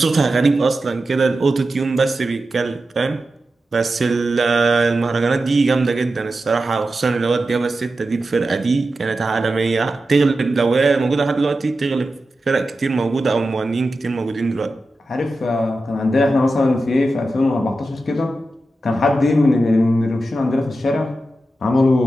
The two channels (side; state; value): both; normal; correlation 0.91